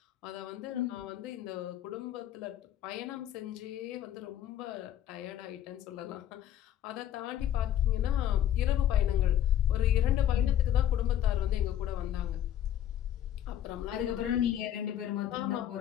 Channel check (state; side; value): quieter; right; 11.0 dB